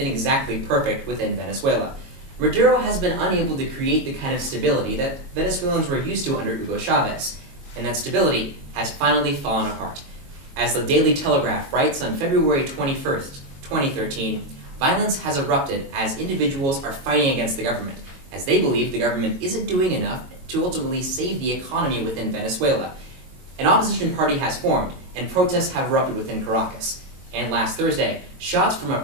exactly perfect within Venezuela. Maduro has been unable to create the kind of stability that Venezuelans were used to under Hugo Chavez, and that stability has finally fallen apart. As the Daily Telegraph writes on February 21st, 2013, violence has erupted as individuals are fighting against the government, as they believe the government isn't doing enough to ultimately save the economy within Venezuela. An opposition party has formed, and protests have erupted within Caracas. And last Thursday, shots from a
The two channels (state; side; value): late; left; 22 ms